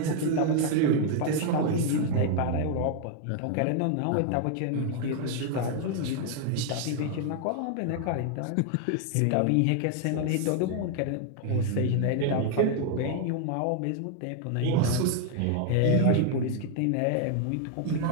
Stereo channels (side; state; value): both; different; correlation 0.00